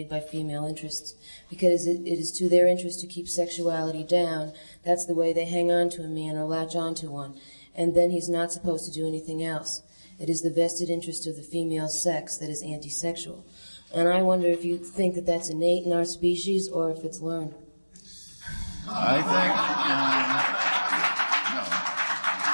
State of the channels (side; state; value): both; inverted; correlation -1.00